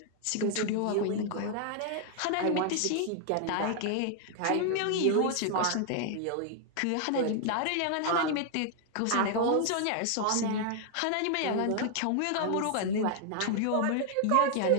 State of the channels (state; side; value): different; both; correlation 0.00